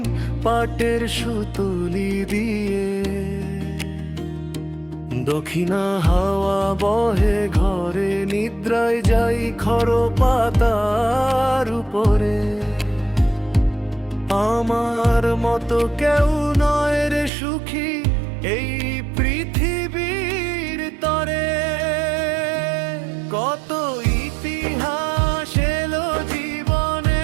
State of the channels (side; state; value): left; drops out; at 17.3 s